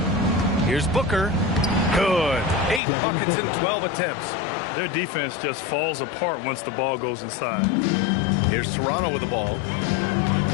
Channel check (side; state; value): right; drops out; at 2.8 s